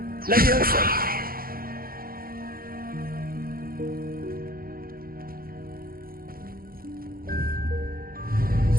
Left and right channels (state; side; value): late; left; 0.42 ms